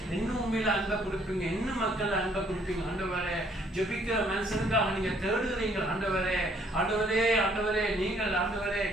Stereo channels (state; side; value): normal; both; correlation 0.64